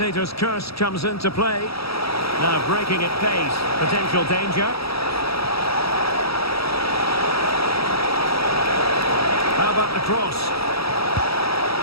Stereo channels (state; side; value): late; right; 0.76 ms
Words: curse comes into play. Now breaking at pace, potential danger. How about the cross?